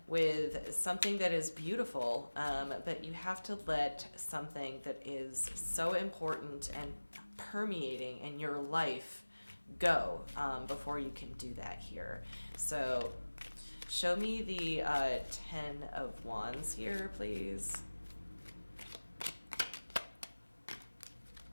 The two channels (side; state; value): both; inverted; correlation -1.00